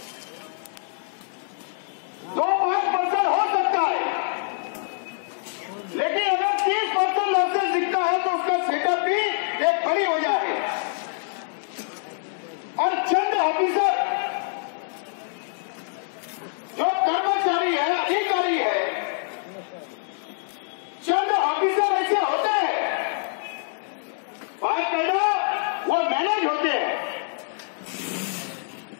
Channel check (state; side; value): silent; right; digital silence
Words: 2-5% हो सकता है, लेकिन अगर 30% लॉसेस दिखता है तो उसका सेटअप भी एक बड़ी वजह है। और चंद ऑफिसर जो कर्मचारी है, अधिकारी है, चंद ऑफिसर ऐसे होते हैं, बाकायदा वो मैनेज होते हैं